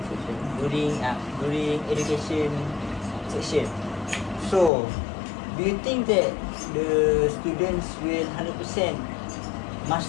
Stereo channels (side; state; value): right; drops out; at 4.7 s